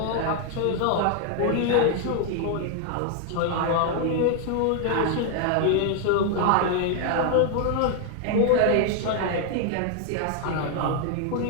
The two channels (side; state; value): both; different; correlation 0.00